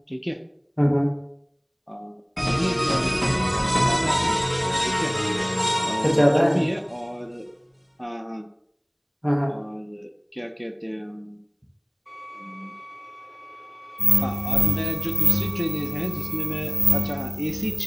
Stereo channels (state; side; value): identical; both; correlation 1.00